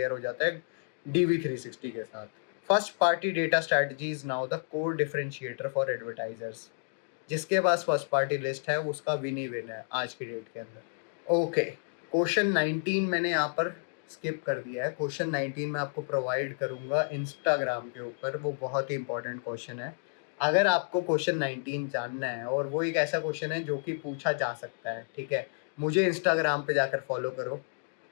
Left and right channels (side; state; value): right; silent; digital silence